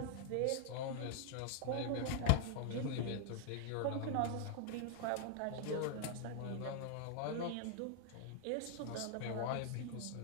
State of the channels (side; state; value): both; different; correlation -0.01